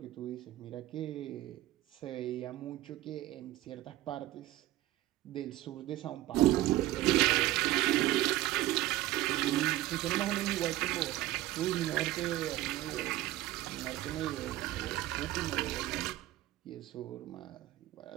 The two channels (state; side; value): quieter; left; 15.7 dB